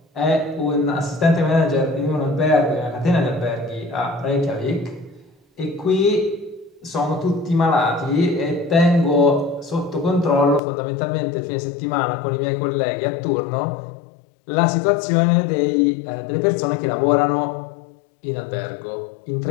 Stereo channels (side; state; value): right; drops out; at 10.6 s